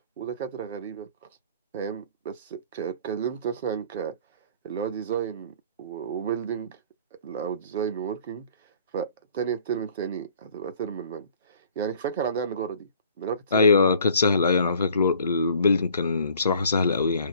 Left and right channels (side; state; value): both; inverted; correlation -0.53